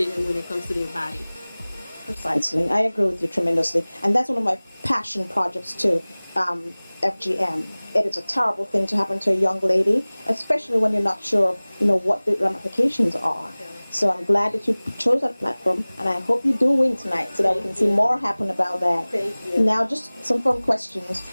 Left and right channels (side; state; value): both; inverted; correlation -1.00